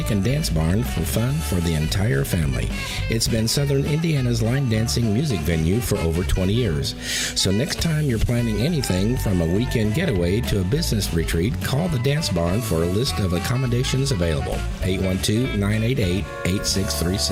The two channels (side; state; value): both; identical; correlation 1.00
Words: and Dance Barn for fun for the entire family. It's been southern Indiana's line dancing music venue for over 20 years. So next time you're planning anything from a weekend getaway to a business retreat, call the Dance Barn for a list of accommodations available.